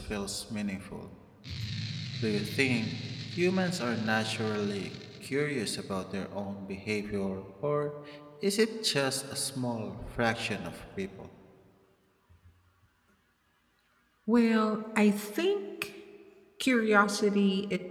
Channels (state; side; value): identical; both; correlation 1.00